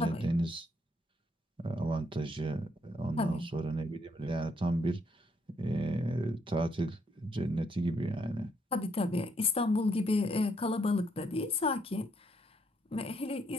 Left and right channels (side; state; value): both; normal; correlation 0.73